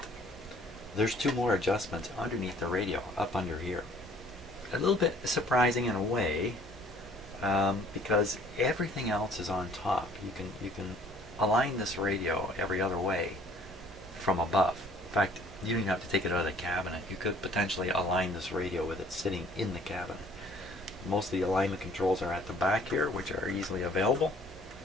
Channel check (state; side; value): normal; both; correlation 0.56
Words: there's 2 more adjustments underneath the radio, up under here. A little bit surprising in a way, because everything else is on top. You can align this radio every other way from above. In fact, you don't even have to take it out of the cabinet. You could potentially align this radio with it sitting in the cabinet. Most of the alignment controls are at the back here, which are easily available.